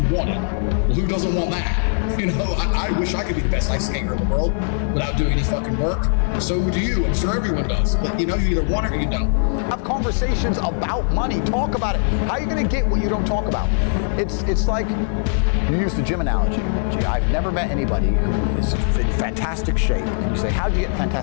wanted. Well, who doesn't want that? I wish I could be the best ice skater in the world without doing any fucking work. So do you. I'm sure everyone does. But you either want it or you don't. Have conversations about money. Talk about it. How are you going to get what you don't talk about? It's like, you use the gym analogy. Gee, I've never met anybody who is in fantastic shape. And you say, how'd you get in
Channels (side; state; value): right; silent; digital silence